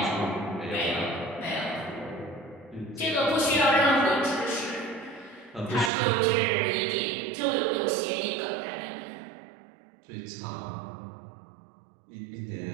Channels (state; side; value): drops out; left; at 5.9 s